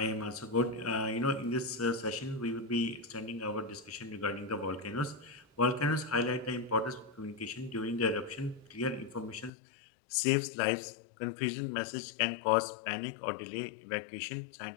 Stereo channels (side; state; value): right; drops out; at 9.5 s